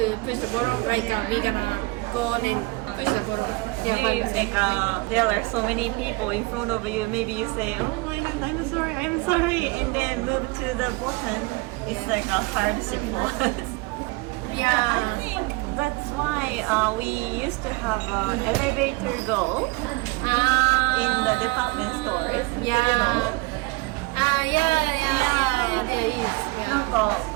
push the button, like we gonna go and push the button. Yeah, Maybe but like there are so many people in front of you. Maybe you say, "Oh my God, I'm sorry," and then move to the button. It's like a hardship for us. I yeah. think that's why we used to have elevator go in the department stores. Yeah. Yeah, there is. Yeah.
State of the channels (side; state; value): left; quieter; 23.9 dB